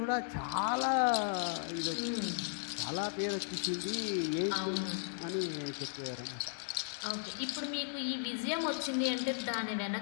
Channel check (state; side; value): silent; right; digital silence